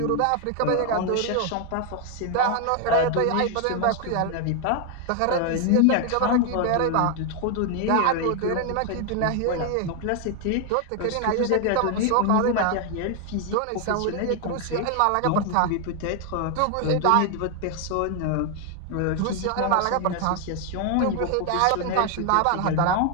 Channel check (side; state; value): both; different; correlation 0.00